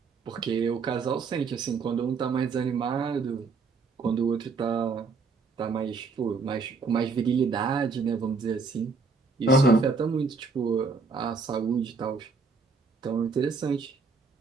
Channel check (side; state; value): left; quieter; 4.6 dB